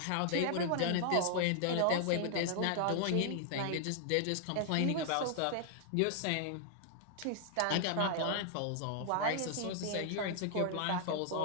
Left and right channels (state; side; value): different; both; correlation -0.01